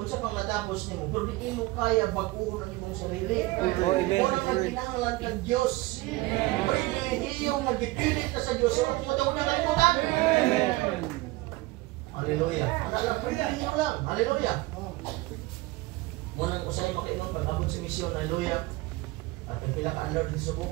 pang natapos ni mo, pero di mo kaya baguhon ang imong sarili. Unang nagkinahanglan kang Diyos. Pribilehiyo nga gipilit ka sa Diyos. So, kung matawag na kalimutan. Hallelujah. Ano pribilehiyo lang. Hallelujah. Munang usay makaingon pag-abot sa misyon. Hallelujah. At ang pila ka alert sa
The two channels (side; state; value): left; quieter; 20.4 dB